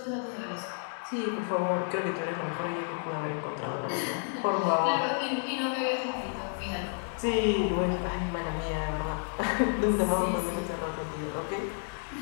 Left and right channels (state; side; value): silent; right; 57 dB below the other